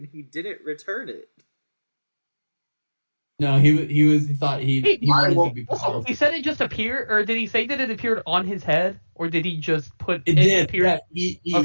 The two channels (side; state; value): both; inverted; correlation -1.00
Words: he didn't return it. No, he thought he wanted to be powerful. He said it just appeared, or did he say that it appeared on his head, or did he just put it? Did appear? Yeah,